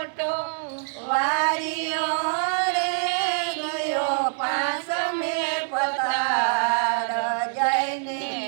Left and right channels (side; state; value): left; silent; digital silence